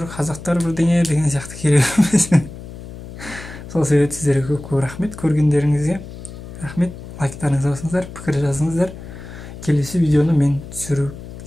қазақтар бірдеңе деген сияқты керек емес. Сол себепті сіздерге көп рахмет, көргендеріңізге рахмет. Лайктарыңызды басыңыздар, пікір жазыңыздар. Келесі видеоны мен түсіріп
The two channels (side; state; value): left; noise; hum, 13 dB below the sound